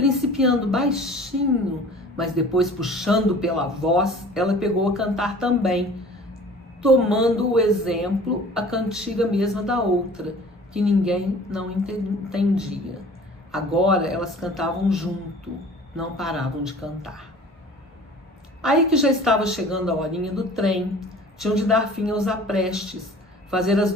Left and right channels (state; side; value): normal; both; correlation 0.46